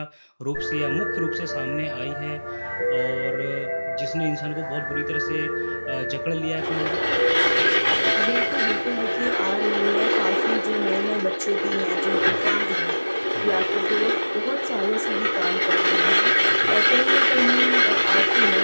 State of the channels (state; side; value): inverted; both; correlation -1.00